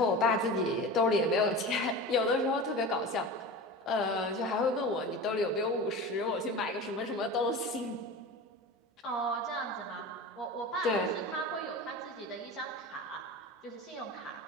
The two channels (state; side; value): normal; both; correlation 0.31